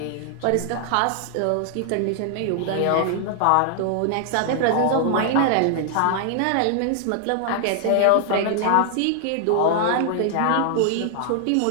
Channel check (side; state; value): both; different; correlation 0.00